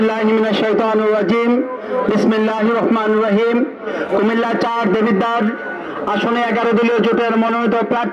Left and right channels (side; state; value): both; identical; correlation 1.00